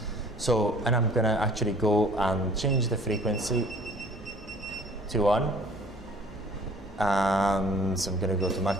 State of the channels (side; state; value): both; normal; correlation 0.52